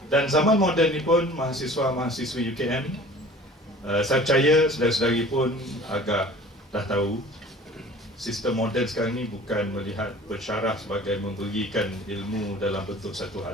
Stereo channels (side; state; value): both; normal; correlation 0.46